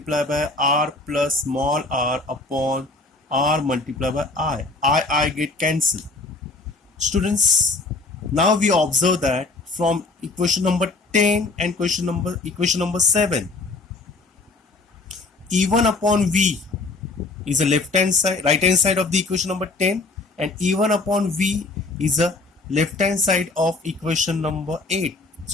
by R plus small r upon R multiplied by I. I get cancelled. Students, now we observe that from equation number 10 and equation number 7, E1 upon V is a left hand side, right hand side of the equation number 10, and E1 upon V is a left hand side of equation number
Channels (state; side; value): quieter; right; 3.4 dB